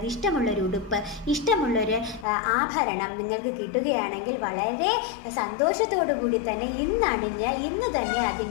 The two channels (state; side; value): drops out; right; at 2.2 s